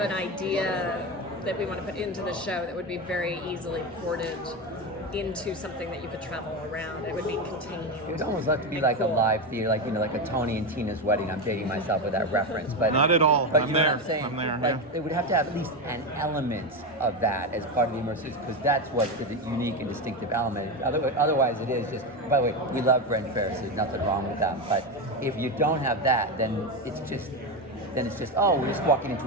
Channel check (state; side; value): normal; both; correlation 0.16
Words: idea that we want to put into the show that would be very easily ported into something that you could travel around. It would be contained. It would almost have to be like a live theater, like like a Tony and Tina's wedding. I'm dating myself with that reference, but not at all. But I'm know there. what I'm saying? I'm there. Like, it would have to have at least an element of that as part of the immersive, because that's what the unique and distinctive element. Otherwise, it is just. By the way, we love Ren fairs. There's nothing wrong with that. But if you don't have that, then it's just we're just walking